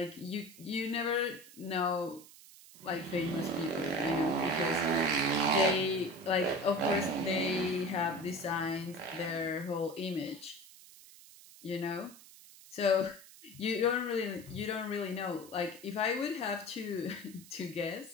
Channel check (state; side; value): noise; right; hiss, 20 dB below the sound